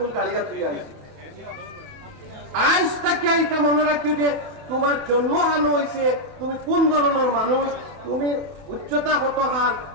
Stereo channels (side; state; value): left; late; 27 ms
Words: গাড়িয়া থুই আইছি। আজ থেকে এটা মনে রাখিও যে তোমার জন্ম হানো হয়েছে, তুমি কোন ধরনের মানুষ, তুমি উচ্চতা কত হান,